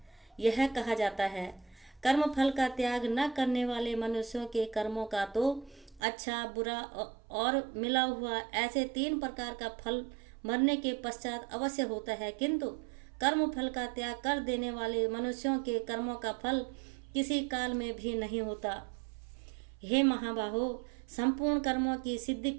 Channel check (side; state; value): left; drops out; at 6.0 s